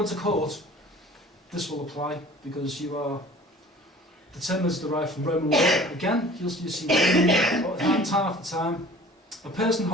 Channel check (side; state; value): both; normal; correlation 0.46